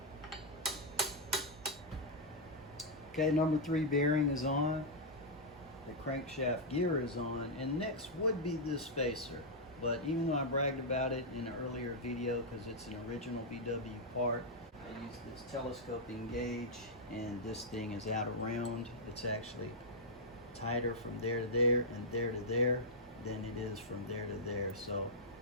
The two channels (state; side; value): normal; both; correlation -0.06